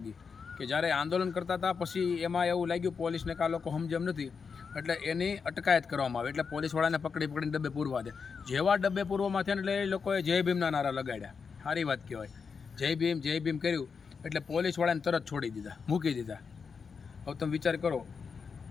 કે જ્યારે આંદોલન કરતા હતા પછી એમાં એવું લાગ્યું પોલીસને કે આ લોકો સમજમ નથી, એટલે એની અટકાયત કરવામાં આવે, એટલે પોલીસવાળાને પકડીને ડબ્બે પૂરવા દે. જેવા ડબ્બે પૂરવામાં થયા એટલે એ લોકોએ જય ભીમના નારા લગાડ્યા. સારી વાત કહેવાય. જય ભીમ કર્યું એટલે પોલીસવાળાને તરત છોડી દીધા, મૂકી દીધા. હવે તમે વિચાર કરો,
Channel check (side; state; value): right; quieter; 5.7 dB